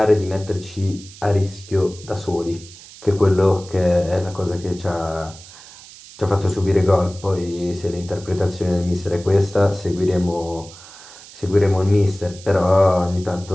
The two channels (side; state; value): right; noise; hiss, 19 dB below the sound